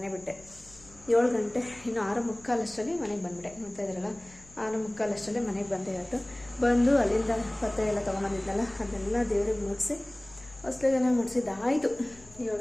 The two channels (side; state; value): left; noise; hum, 24 dB below the sound